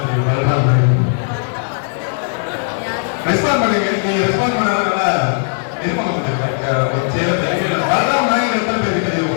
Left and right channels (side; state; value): right; silent; digital silence